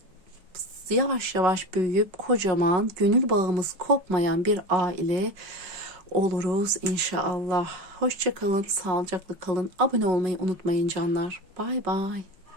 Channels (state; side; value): late; left; 5.4 ms